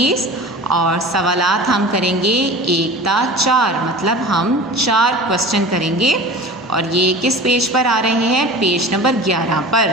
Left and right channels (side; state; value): both; normal; correlation 0.37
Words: और सवालात हम करेंगे 1 ता 4, मतलब हम 4 क्वेश्चन करेंगे और ये किस पेज पर आ रहे हैं, पेज नंबर 11 पर।